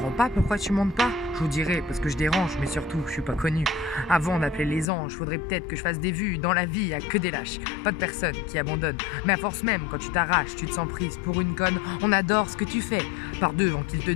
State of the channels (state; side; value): drops out; right; at 4.9 s